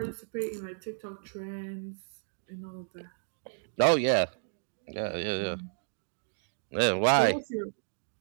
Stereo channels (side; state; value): left; silent; digital silence